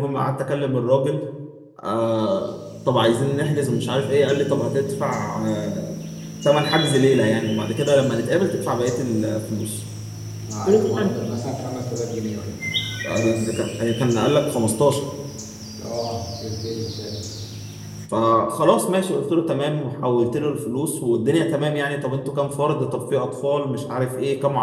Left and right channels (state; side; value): identical; both; correlation 1.00